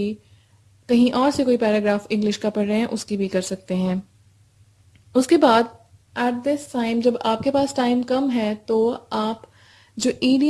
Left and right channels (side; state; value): both; identical; correlation 1.00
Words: کہیں اور سے کوئی پیراگراف انگلش کا پڑھ رہے ہیں اس کی بھی کر سکتے ہیں۔ اس کے بعد ایٹ دس ٹائم جب آپ کے پاس ٹائم کم ہے تو آپ جو